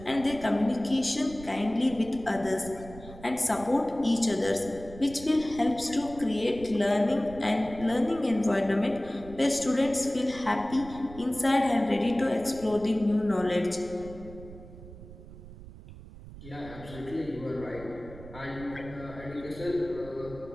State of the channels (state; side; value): noise; right; rumble, 16 dB below the sound